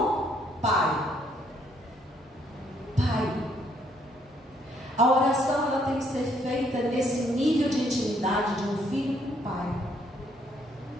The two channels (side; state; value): both; normal; correlation 0.69